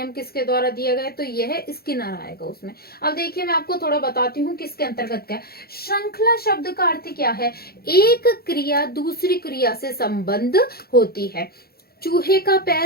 किसके द्वारा दिया गया है, तो यह है स्किनर आएगा उसमें। अब देखिए मैं आपको थोड़ा बताती हूँ किसके अंतर्गत क्या है। श्रृंखला शब्द का अर्थ क्या है, एक क्रिया दूसरी क्रिया से संबंध होती है। चूहे का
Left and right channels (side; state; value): right; late; 0.45 ms